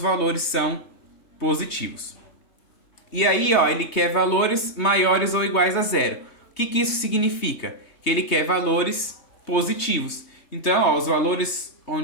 são positivos. E aí, ó, ele quer valores maiores ou iguais a zero. O que isso significa? Que ele quer valores positivos. Então, ó, os valores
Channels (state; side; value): late; right; 3.2 ms